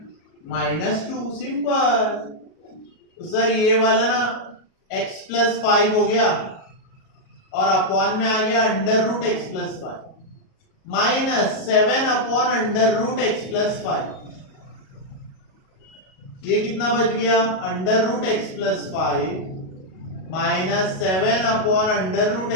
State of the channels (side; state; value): right; late; 37 ms